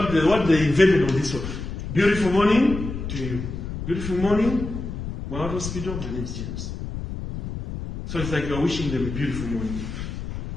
they invented on this one, beautiful morning to you. Beautiful morning, my hospital, my name is James. So it's like you're wishing them a beautiful morning.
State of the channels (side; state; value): left; noise; rumble, 7 dB below the sound